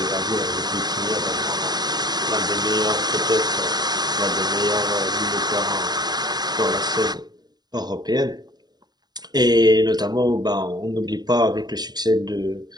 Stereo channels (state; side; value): late; left; 0.20 ms